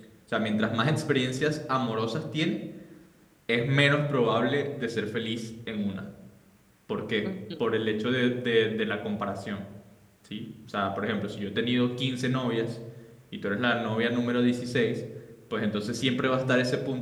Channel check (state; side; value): identical; both; correlation 1.00